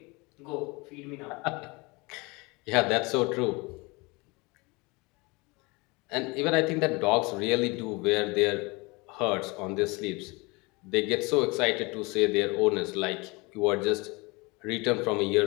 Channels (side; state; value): right; quieter; 26.2 dB